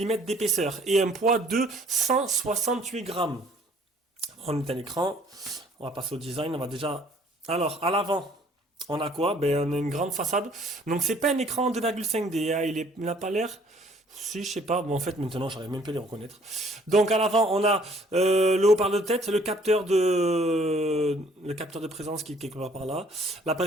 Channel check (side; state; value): both; normal; correlation 0.59